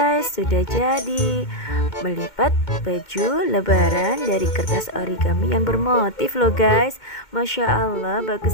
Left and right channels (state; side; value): late; right; 2.2 ms